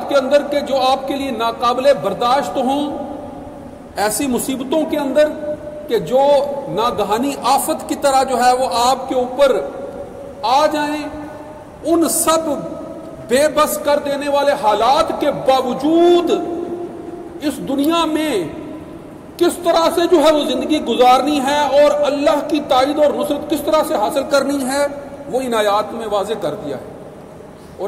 کے اندر کہ جو آپ کے لیے ناقابل برداشت ہوں، ایسی مصیبتوں کے اندر کہ جو ناگہانی آفت کی طرح جو ہے وہ آپ کے اوپر آ جائیں، ان سب بے بس کر دینے والے حالات کے باوجود اس دنیا میں کس طرح سے جو ہے وہ زندگی گزارنی ہے اور اللہ کی تائید اور نصرت کس طرح سے حاصل کرنی ہے، وہ ان آیات میں واضح کر دیا ہے۔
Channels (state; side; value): identical; both; correlation 1.00